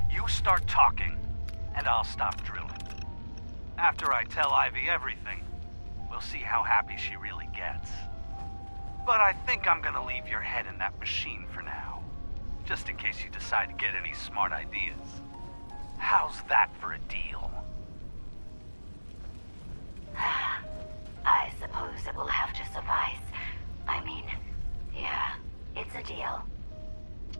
you start talking, and I'll stop drilling. After I tell Ivy everything, we'll see how happy she really gets. But I think I'm gonna leave your head in that machine for now, just in case you decide to get any smart ideas. How's that for a deal? I suppose it will have to suffice. I mean, yeah, it's a deal.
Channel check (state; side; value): inverted; both; correlation -1.00